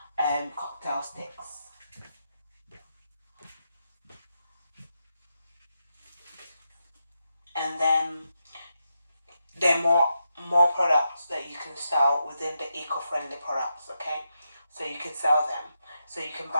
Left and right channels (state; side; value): inverted; both; correlation -0.84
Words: cocktail sticks. And then there are more products that you can sell within the eco-friendly products. Okay, so you can sell them. So you can